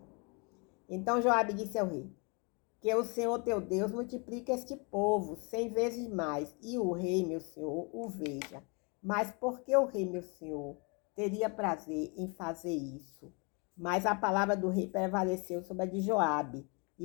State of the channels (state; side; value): quieter; right; 32.4 dB